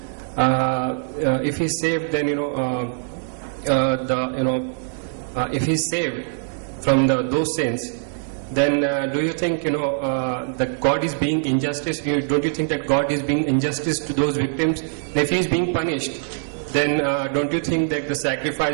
if he's saved, then if he's saved from those sins, then do you think that God is being injustice? Don't you think that God is being injustice to those victims? And if he is being punished, then don't you think that the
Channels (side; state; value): left; silent; digital silence